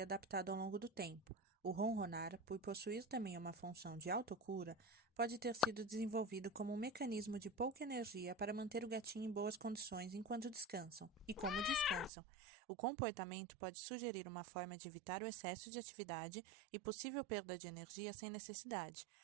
ao longo do tempo. O ronronar, por possuir também uma função de autocura, pode ter sido desenvolvido como um mecanismo de pouca energia para manter o gatinho em boas condições enquanto descansam. E como descansam, o comportamento pode sugerir uma forma de evitar o excesso de atividade e possível perda de energia sem necessidade.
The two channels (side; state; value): left; drops out; at 12.1 s